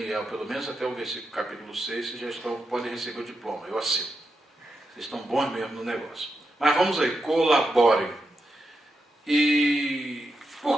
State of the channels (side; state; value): both; normal; correlation 0.86